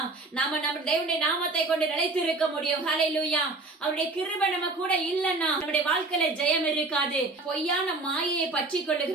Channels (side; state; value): left; quieter; 3.3 dB